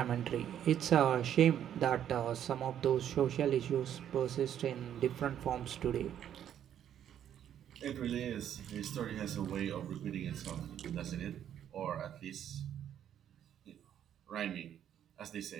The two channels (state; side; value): quieter; left; 10.1 dB